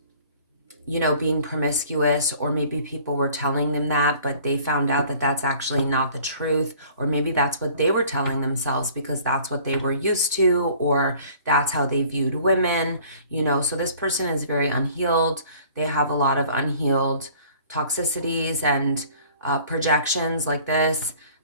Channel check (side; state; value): both; inverted; correlation -0.51